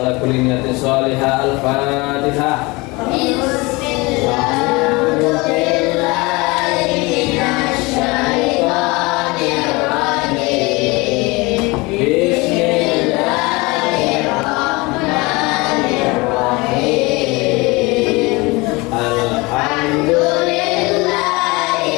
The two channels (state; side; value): quieter; right; 24.7 dB